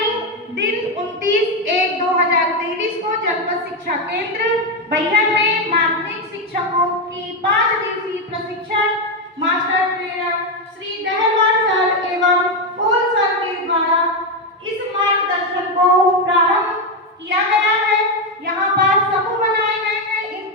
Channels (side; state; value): both; normal; correlation 0.08